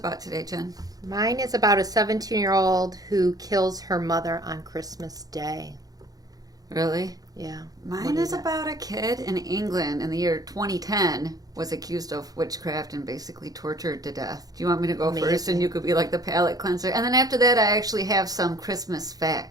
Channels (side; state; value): left; late; 0.18 ms